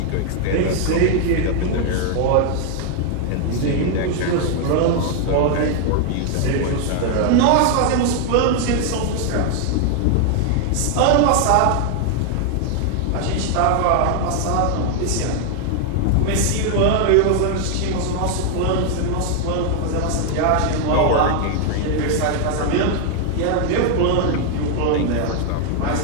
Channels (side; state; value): both; different; correlation 0.00